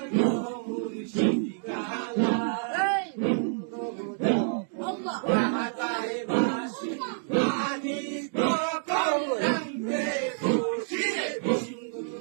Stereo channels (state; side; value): silent; left; digital silence